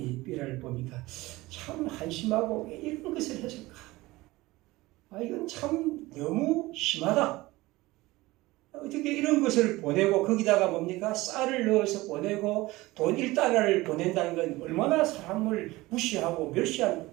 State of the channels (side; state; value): left; quieter; 19.7 dB